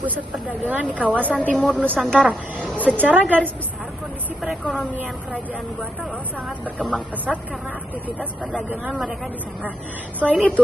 perdagangan di kawasan timur Nusantara. Secara garis besar, kondisi perekonomian Kerajaan Goa Talo sangat berkembang pesat karena aktivitas perdagangan mereka di sana. Selain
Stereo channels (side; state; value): both; normal; correlation 0.81